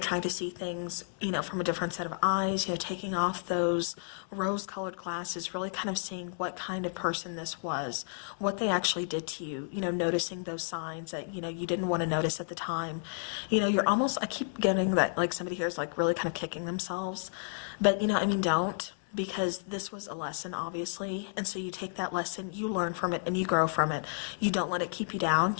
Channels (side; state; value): right; silent; 57 dB below the other